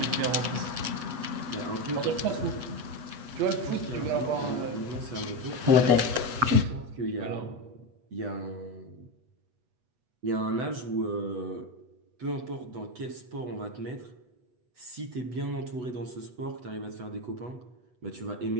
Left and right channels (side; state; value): left; late; 8.2 ms